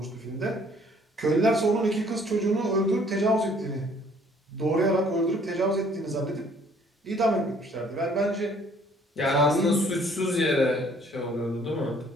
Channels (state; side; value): normal; both; correlation 0.59